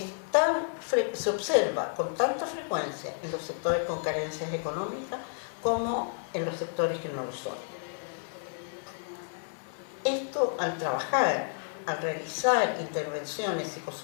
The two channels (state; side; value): silent; right; digital silence